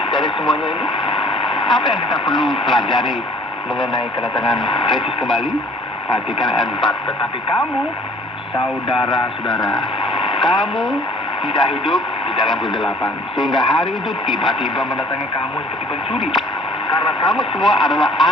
dari semuanya ini? Apa yang kita perlu pelajari mengenai kedatangan Kristus kembali? Perhatikan ayat 4. Tetapi kamu, saudara-saudara, kamu tidak hidup di dalam kegelapan, sehingga hari itu tiba-tiba mendatangi kamu seperti pencuri. Karena kamu semua adalah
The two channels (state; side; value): normal; both; correlation 0.54